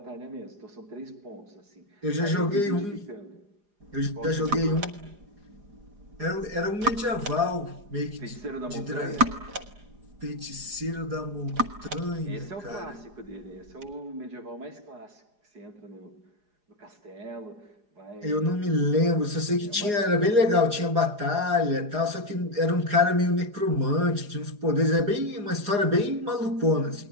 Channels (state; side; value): late; left; 4.9 ms